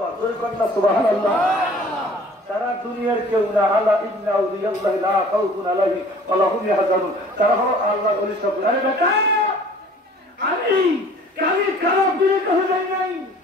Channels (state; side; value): normal; both; correlation 0.50